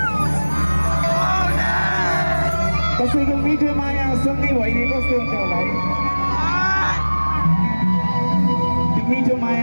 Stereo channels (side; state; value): both; inverted; correlation -1.00